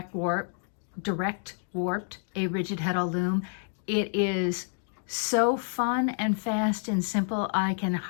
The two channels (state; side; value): silent; right; 59 dB below the other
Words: warped a rigid heddle loom, it is so fun and fast and simple I can